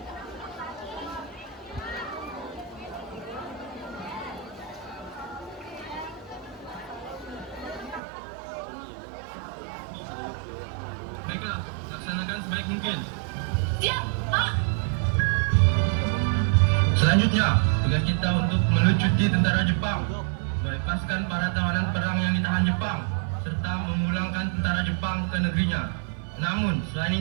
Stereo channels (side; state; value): left; drops out; at 8.0 s